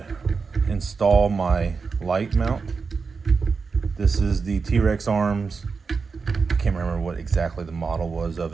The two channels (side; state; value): left; quieter; 4.9 dB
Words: install my light mount. This is the T-Rex arms. I can't remember what exactly the model was of